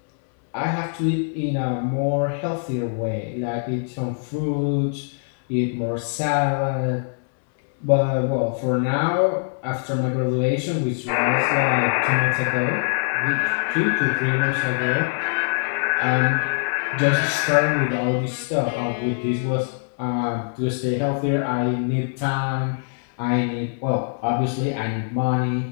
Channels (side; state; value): right; silent; digital silence